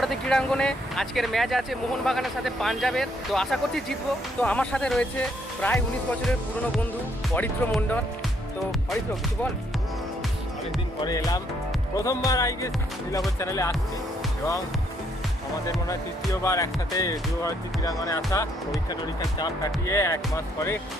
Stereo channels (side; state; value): both; normal; correlation 0.70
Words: ক্রীড়াঙ্গনে। আজকের ম্যাচ আছে মোহনবাগানের সাথে পাঞ্জাবের, তো আশা করছি জিতবো। তো আমার সাথে রয়েছে প্রায় 19 বছরের পুরনো বন্ধু অরিত্র মণ্ডল। তো অরিত্র, কিছু বল। অনেকদিন পরে এলাম, প্রথমবার নীলাভর চ্যানেলে আসছি এবং আমাদের মনে হয় তৃতীয়বার একসাথে যুব ভারতী ক্রীড়াঙ্গনে আসা। পরীক্ষার চাপ কাটিয়ে 1 মাস পরে